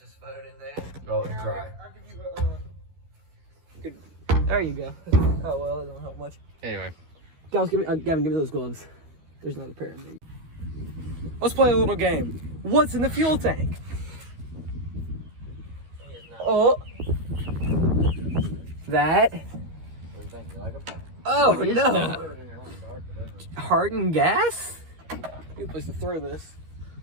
phone in there. Oh, let's try. I'll give you Good. There you go. Oh, well, that don't help much. Anyway. Gavin, give me those gloves. There's another pair in there. Let's play a little game. What's in the fuel tank? Oh. That. Oh, no. Hardened gas? Good place to throw this.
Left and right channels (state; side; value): late; left; 13 ms